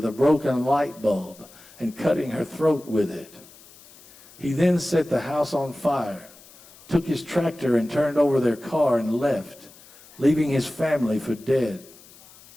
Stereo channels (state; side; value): noise; left; hiss, 23 dB below the sound